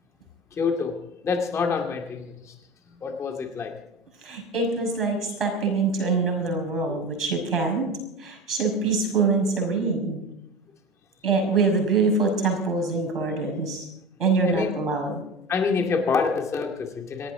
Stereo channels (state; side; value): normal; both; correlation 0.32